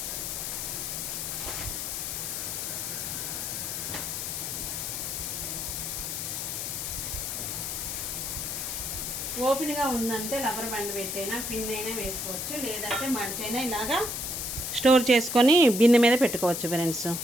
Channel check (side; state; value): left; noise; hiss, 3 dB below the sound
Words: ఓపెన్గా ఉందంటే రబ్బర్ బ్యాండ్ పెట్టైనా పిన్ అయినా వేసుకోవచ్చు, లేదంటే మడిచైనా ఇలాగా స్టోర్ చేసుకొని బిన్నె మీద పెట్టుకోవచ్చు ఫ్రెండ్స్.